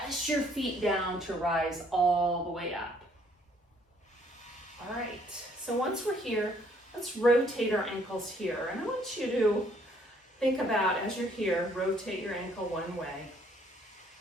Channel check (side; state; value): both; normal; correlation 0.64